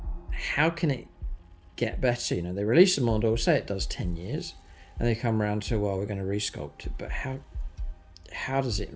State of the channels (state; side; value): identical; both; correlation 1.00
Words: how can it get better? You know, they release a model, say it does 10 years, and they come around to, well, we're going to resculpt it, but how does it